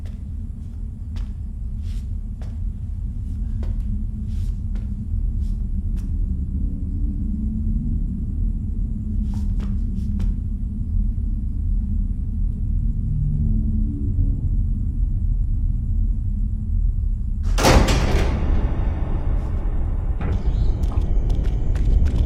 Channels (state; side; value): identical; both; correlation 1.00